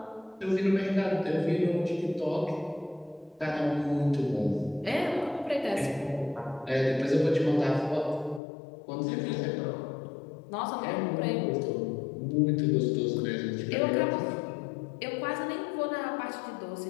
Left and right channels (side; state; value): right; drops out; at 8.4 s